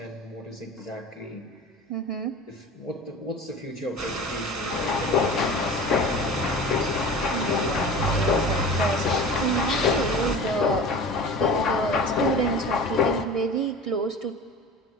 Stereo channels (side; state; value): both; normal; correlation 0.36